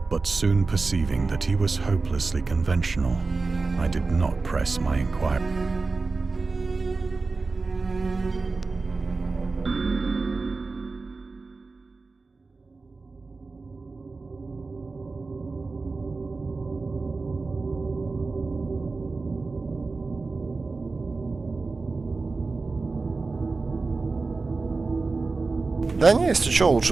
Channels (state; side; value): quieter; left; 3.9 dB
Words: But soon perceiving that he was hopelessly conventional, I did not press my inquiry. Да не, если что,